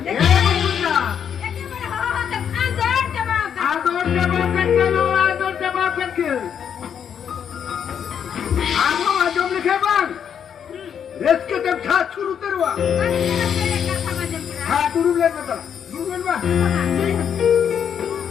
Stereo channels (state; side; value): quieter; right; 8.1 dB